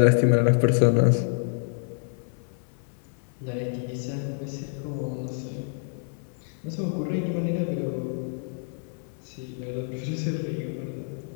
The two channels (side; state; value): right; silent; 60 dB below the other